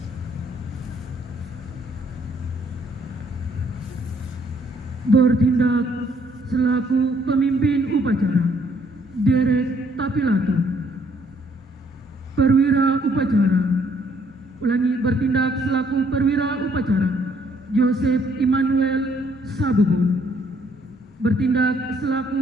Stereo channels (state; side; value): normal; both; correlation 0.66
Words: Bertindak selaku pemimpin upacara Derek Tapilato. Perwira upacara. Ulangi, bertindak selaku perwira upacara Joseph Immanuel Sabubun. Bertindak